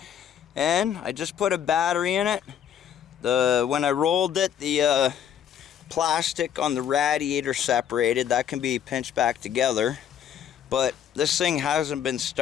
And I just put a battery in it. When I rolled it, the plastic on the radiator separated. That can be pinched back together. But this thing hasn't been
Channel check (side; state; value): right; quieter; 9.2 dB